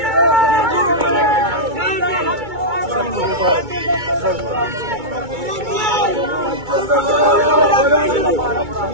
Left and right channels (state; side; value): late; left; 2.2 ms